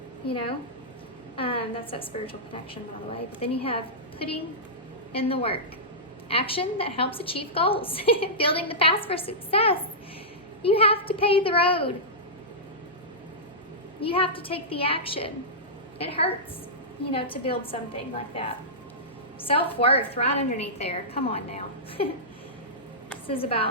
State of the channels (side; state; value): both; normal; correlation -0.14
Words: you know. That's that spiritual connection, by the way. But then you have putting in the work. Action that helps achieve goals. Building the path for success. You have to pave the road. You have to take the action. It hurts, you know, to build something like that. Self-worth right underneath there. Come on now. This is